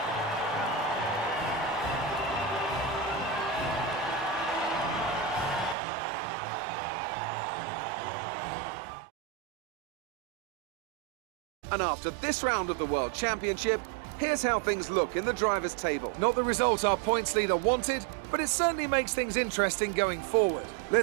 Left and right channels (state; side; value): drops out; left; at 5.8 s